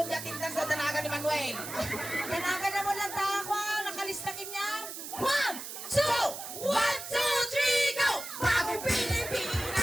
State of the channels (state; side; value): noise; right; hiss, 9 dB below the sound